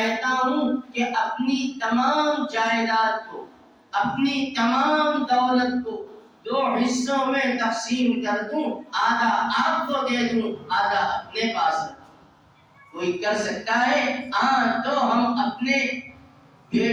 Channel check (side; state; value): both; identical; correlation 1.00